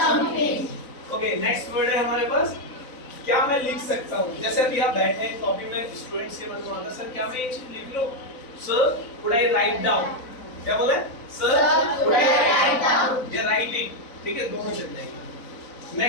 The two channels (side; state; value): right; late; 4.0 ms